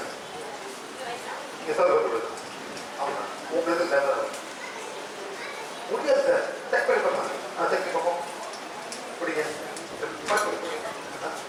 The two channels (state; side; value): identical; both; correlation 1.00